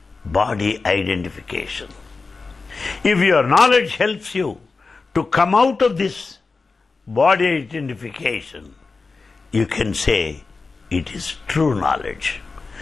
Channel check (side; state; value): right; quieter; 4.2 dB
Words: body identification. If your knowledge helps you to come out of this body identification, you can say it is true knowledge.